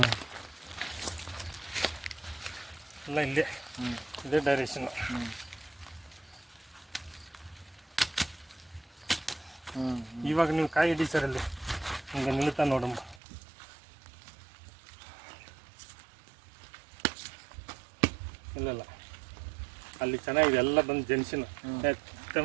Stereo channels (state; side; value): drops out; left; at 13.2 s